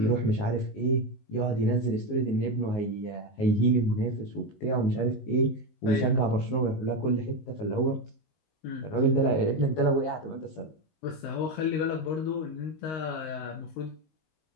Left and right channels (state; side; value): late; right; 19 ms